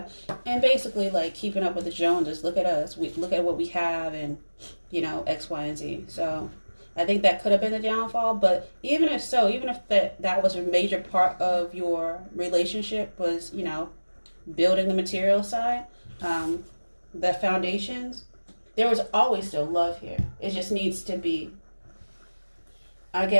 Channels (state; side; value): inverted; both; correlation -1.00